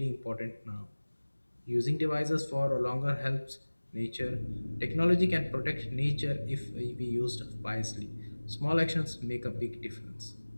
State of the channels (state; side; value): inverted; both; correlation -1.00